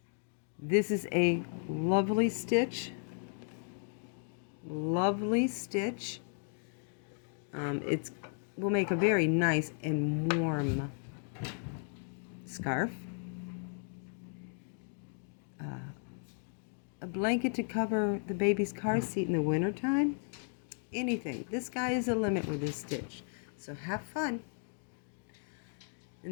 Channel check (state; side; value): silent; right; 54 dB below the other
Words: This is a lovely stitch. Lovely stitch. It will make a very nice and warm scarf. A blanket to cover the baby's car seat in the wintertime. Anything. This guy is a limit with this stitch. So have fun.